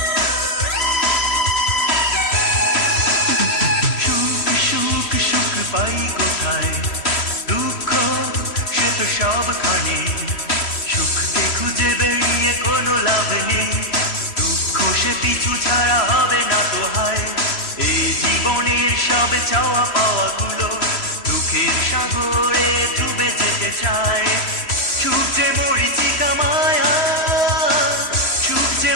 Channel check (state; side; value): late; right; 3.1 ms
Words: পাই কোথায় দুঃখ সে তো সবখানে সুখকে খুঁজে বেরিয়ে কোনো লাভ নেই দুঃখ সে পিছু ছাড়া হবে না তো হায় এই জীবনের সব চাওয়া পাওয়া গুলো দুঃখের সাগরে ডুবে যেতে চায় সুখ যে মরিচিকা মায়া সুখ যে